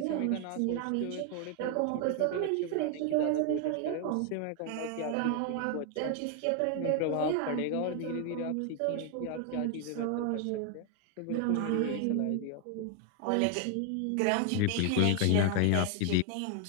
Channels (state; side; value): different; both; correlation 0.00